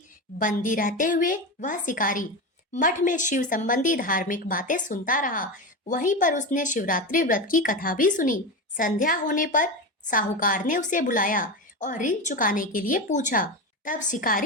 बंदी रहते हुए वह शिकारी मठ में शिव संबंधी धार्मिक बातें सुनता रहा। वहीं पर उसने शिवरात्रि व्रत की कथा भी सुनी। संध्या होने पर साहूकार ने उसे बुलाया और ऋण चुकाने के लिए पूछा। तब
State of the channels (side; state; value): both; normal; correlation 0.20